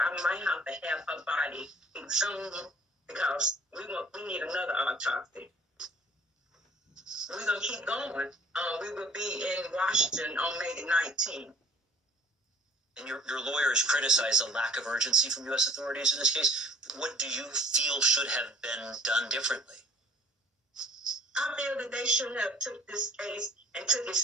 might have to have her body exhumed because we need another autopsy. We're going to keep going. We will be in Washington on May the 19th. And your lawyer has criticized the lack of urgency from U.S. authorities in this case. What do you feel should have been done differently? I feel that they should have took this case and took it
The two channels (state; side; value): normal; both; correlation 0.53